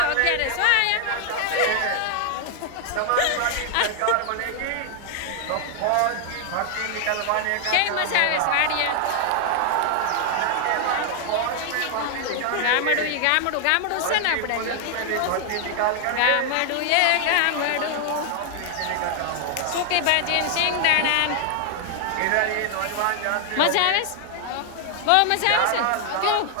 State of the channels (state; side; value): different; both; correlation 0.00